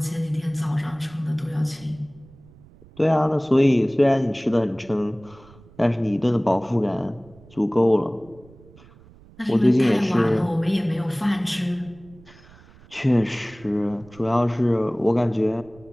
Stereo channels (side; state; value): right; noise; rumble, 24 dB below the sound